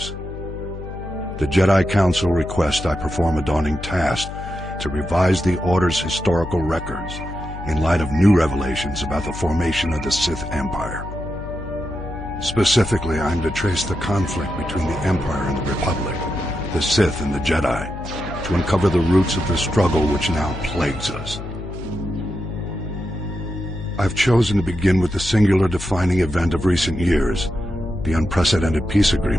The Jedi Council requests I perform a daunting task to revise the Order's historical records in light of new revelations about the formation of the Sith Empire. Specifically, I am to trace the conflict between the Empire and the Republic, the Sith and the Jedi, to uncover the roots of the struggle which now plagues us. I've chosen to begin with the singular defining event of recent years, the unprecedented peace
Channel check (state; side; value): noise; left; hum, 10 dB below the sound